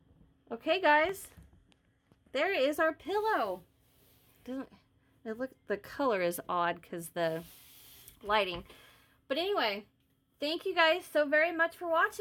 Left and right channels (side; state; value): both; identical; correlation 1.00